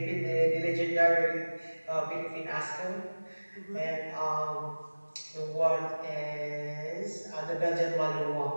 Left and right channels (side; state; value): both; inverted; correlation -1.00